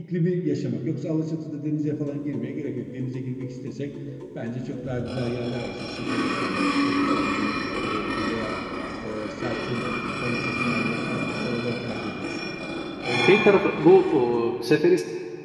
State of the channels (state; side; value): identical; both; correlation 1.00